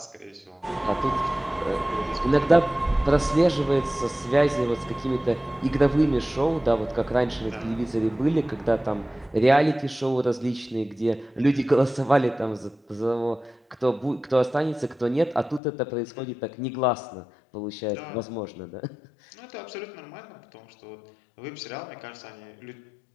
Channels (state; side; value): drops out; right; at 15.6 s